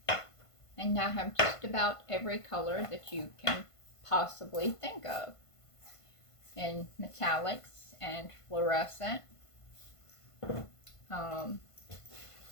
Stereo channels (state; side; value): late; right; 1.5 ms